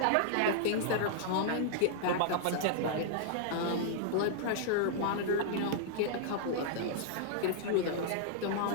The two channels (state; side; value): different; both; correlation -0.01